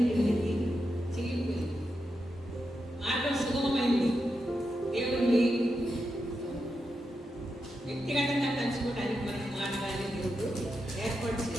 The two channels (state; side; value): normal; both; correlation 0.87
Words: కిందికి చిరిగిపోయింది. మార్గం సుగమమైంది. దేవుణ్ణి వ్యక్తిగతంగా కలుసుకోవడానికి మనకి మార్గాన్ని దేవుడు ఏర్పాటు